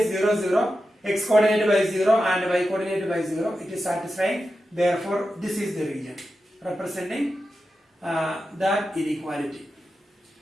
0, 0. X coordinate by 0 and y coordinate by 0. It is satisfying. Therefore, this is the region representing that inequality.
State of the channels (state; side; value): normal; both; correlation 0.91